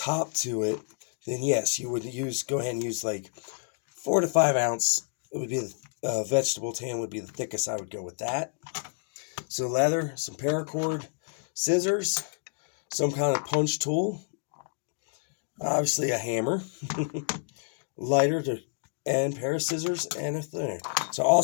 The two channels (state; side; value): silent; right; digital silence